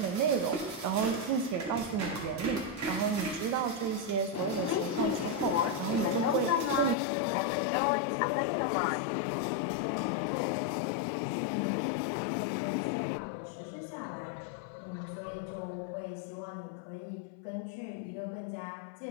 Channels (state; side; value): drops out; right; at 7.0 s